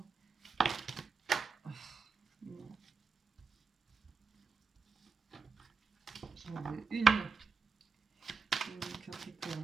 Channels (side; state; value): left; quieter; 5.1 dB